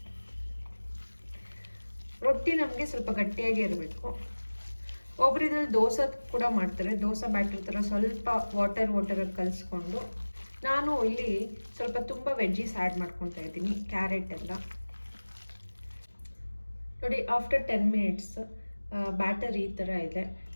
ರೊಟ್ಟಿ ನಮಗೆ ಸ್ವಲ್ಪ ಗಟ್ಟಿಯಾಗಿ ಇರಬೇಕು. ಒಬ್ರು ಇದ್ರಲ್ಲಿ ದೋಸೆ ಕೂಡ ಮಾಡ್ತಾರೆ. ದೋಸೆ ಬ್ಯಾಟರ್ ಥರ ಸ್ವಲ್ಪ ವಾಟರಾಗಿ ಕಲಿಸ್ಕೊಂಡು, ನಾನು ಇಲ್ಲಿ ಸ್ವಲ್ಪ ತುಂಬ ವೆಜ್ಜೀಸ್ ಆ್ಯಡ್ ಮಾಡ್ಕೊತಾ ಇದ್ದೀನಿ. ಕ್ಯಾರೆಟ್ ಎಲ್ಲ ನೋಡಿ. ಆಫ್ಟರ್ 10 ಮಿನಿಟ್ಸ್ ಬ್ಯಾಟರ್ ಈ ಥರ ಇದೆ.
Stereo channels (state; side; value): inverted; both; correlation -1.00